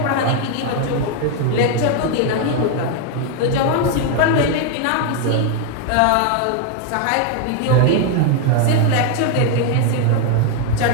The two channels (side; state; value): both; different; correlation 0.01